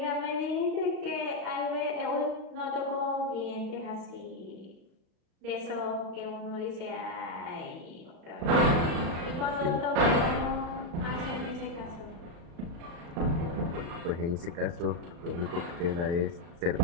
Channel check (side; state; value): left; late; 35 ms